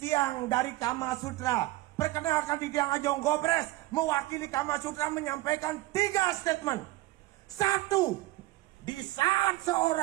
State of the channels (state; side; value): quieter; left; 18.3 dB